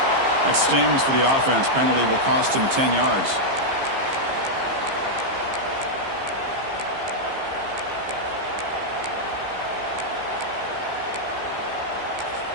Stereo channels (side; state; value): left; late; 15 ms